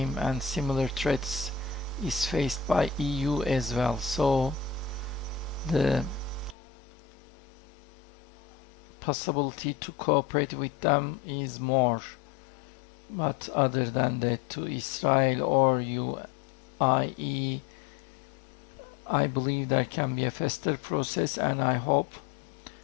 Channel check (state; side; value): drops out; right; at 6.6 s